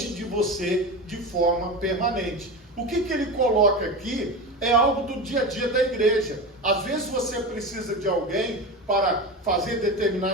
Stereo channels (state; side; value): normal; both; correlation 0.24